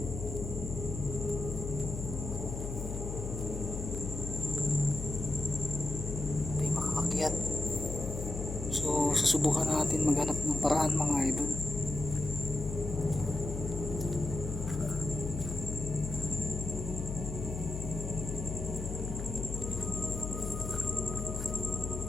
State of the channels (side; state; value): left; noise; hum, 5 dB below the sound